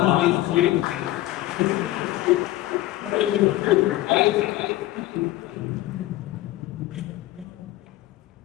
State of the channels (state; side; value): quieter; right; 16.0 dB